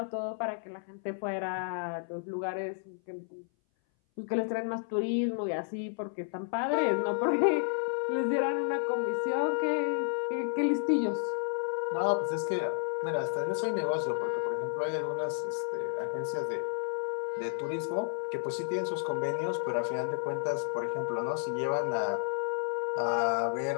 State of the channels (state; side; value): silent; right; 57 dB below the other